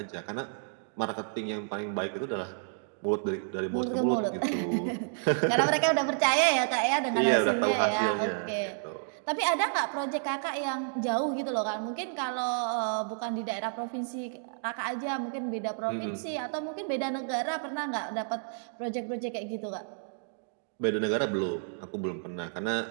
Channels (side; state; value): left; silent; digital silence